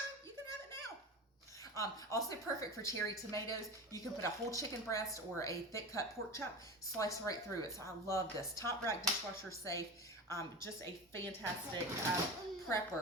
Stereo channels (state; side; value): normal; both; correlation 0.28